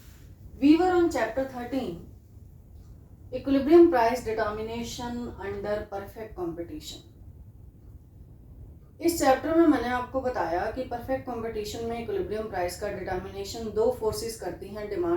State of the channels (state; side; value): identical; both; correlation 1.00